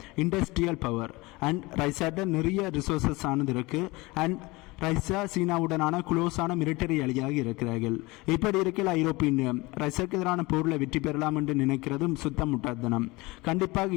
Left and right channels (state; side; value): quieter; right; 22.9 dB